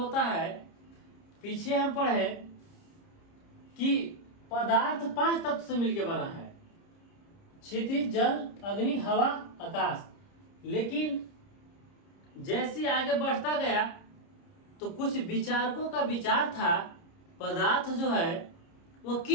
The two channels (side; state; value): right; late; 30 ms